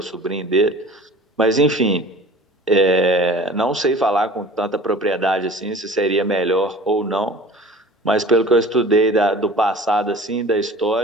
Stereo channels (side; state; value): both; normal; correlation 0.42